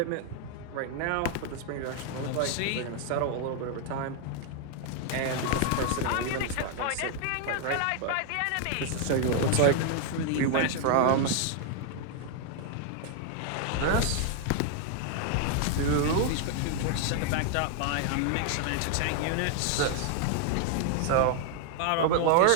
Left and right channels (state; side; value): different; both; correlation 0.00